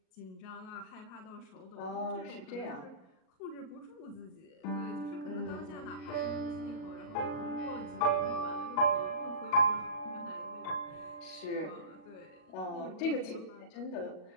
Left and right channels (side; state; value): right; late; 38 ms